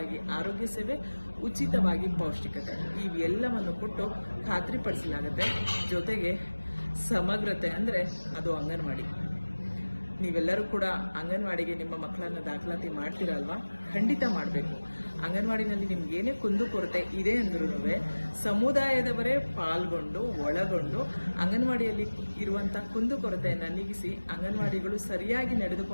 ಆರೋಗ್ಯ ಸೇವೆ, ಉಚಿತವಾಗಿ ಪೌಷ್ಟಿಕತೆ ಇವೆಲ್ಲವನ್ನು ಕೊಟ್ಟು ಖಾತ್ರಿಪಡಿಸಲಾಗುತ್ತೆ. ಜೊತೆಗೆ ಸಮಗ್ರತೆ ಅಂದ್ರೆ ಅದು ಅಂಗನವಾಡಿ. ನೀವೆಲ್ಲರೂ ಕೂಡ ಅಂಗನವಾಡಿಗೆ ನಿಮ್ಮ ಮಕ್ಕಳನ್ನ ದಾಖಲಾತಿ ಮಾಡ್ತೀರಲ್ವಾ? ಖಂಡಿತ ಮಾಡಬೇಕು. ಅಂಗನವಾಡಿನಲ್ಲಿ ನಿಮ್ಗೆ ಏನೇ ಕುಂದುಕೊರತೆ ಇದೆ ಅಂದ್ರೂ ಸಮುದಾಯದವರೇ ಪಾಲ್ಗೊಂಡು ಒಳಗೊಂಡು ಅಂಗನವಾಡಿಯಲ್ಲಿ ಇರುವಂತಹ ಕುಂದುಕೊರತೆಯನ್ನ ನೀಗಿಸಿ ಅಂಗನವಾಡಿಗಳು ಸರಿಯಾಗಿ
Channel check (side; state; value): both; inverted; correlation -1.00